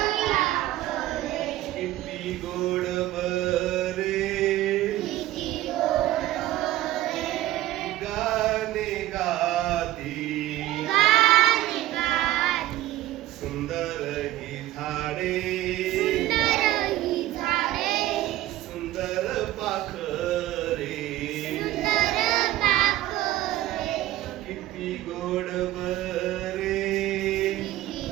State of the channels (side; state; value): left; quieter; 14.9 dB